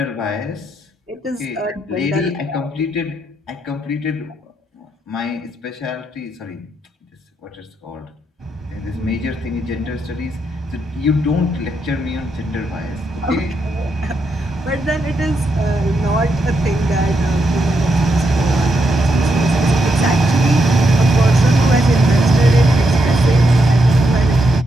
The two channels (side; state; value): both; normal; correlation 0.81